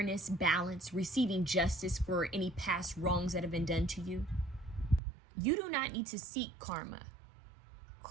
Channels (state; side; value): drops out; left; at 5.0 s